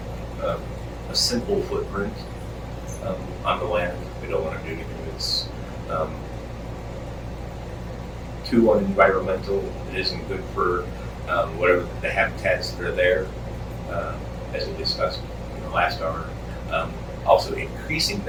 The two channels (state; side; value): identical; both; correlation 1.00